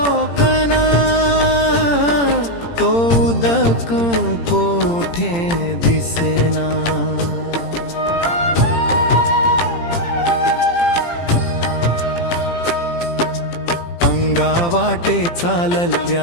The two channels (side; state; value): right; late; 17 ms